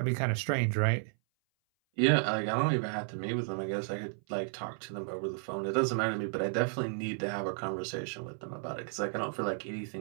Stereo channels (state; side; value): silent; left; 56 dB below the other